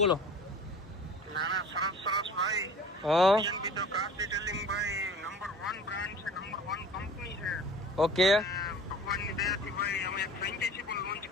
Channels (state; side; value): normal; both; correlation 0.43